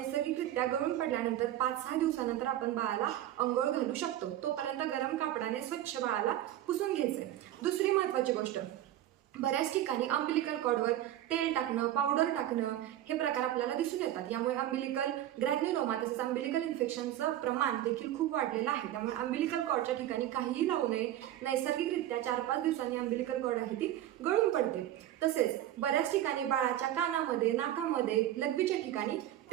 गळून पडल्यानंतर 5-6 दिवसानंतर आपण बाळाला अंघोळ घालू शकतो. तोपर्यंत गरम कापडाने स्वच्छ बाळाला पुसून घ्यायचंय. दुसरी महत्त्वाची गोष्ट, बऱ्याच ठिकाणी अंबिलिकल कॉर्डवर तेल टाकणं, पावडर टाकणं हे प्रकार आपल्याला दिसून येतात. यामुळे अंबिलिकल ग्रॅन्युलोमा तसेच अंबिलिकल इन्फेक्शनचं प्रमाण देखील खूप वाढलेलं आहे. त्यामुळे अंबिलिकल कॉर्डच्या ठिकाणी काहीही लावू नये. नैसर्गिकरित्या 4-5 दिवसांनी अंबिलिकल कॉर्ड आहे ती गळून पडते. तसेच बऱ्याच ठिकाणी बाळाच्या कानामध्ये, नाकामध्ये, लघवीच्या ठिकाणी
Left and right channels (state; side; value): quieter; left; 12.8 dB